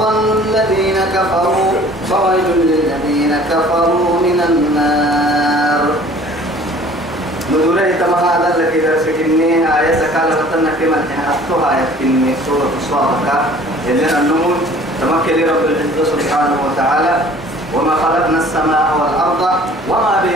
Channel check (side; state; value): both; normal; correlation 0.50